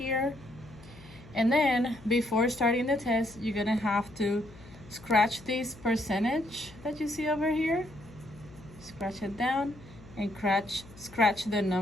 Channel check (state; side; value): noise; left; hum, 21 dB below the sound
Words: And then before starting the test, you're gonna have to scratch this percentage that you see over here. Scratch it down and scratch the